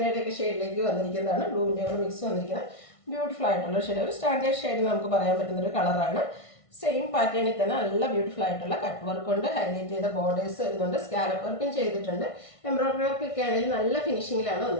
ഷെയ്ഡിലേക്ക് വന്നിരിക്കുന്നതാണ്. ബ്ലൂവിൻ്റെ കൂടെ മിക്സ് വന്നിരിക്കുന്നത് ബ്യൂട്ടിഫുൾ ആയിട്ടുള്ള ഷെയ്ഡ്. ഒരു സ്റ്റാൻഡേർഡ് ഷെയ്ഡ് നമുക്ക് പറയാൻ പറ്റുന്നൊരു കളറാണ്. സെയിം പാറ്റേണിൽ തന്നെ നല്ല ബ്യൂട്ടിഫുൾ ആയിട്ടുള്ള കട്ട് വർക്ക് കൊണ്ട് ഹൈലൈറ്റ് ചെയ്ത ബോർഡേഴ്സ് വരുന്നുണ്ട്. സ്കാലപ്പ് വർക്കും ചെയ്തിട്ടുണ്ട്. എംബ്രോയിഡറി വർക്കൊക്കെ ആണെങ്കിൽ നല്ല ഫിനിഷിങ്ങിലാണ്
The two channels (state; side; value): late; right; 1.6 ms